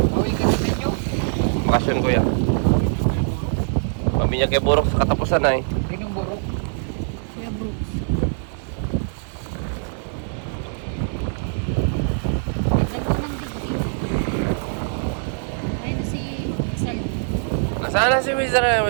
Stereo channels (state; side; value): silent; left; digital silence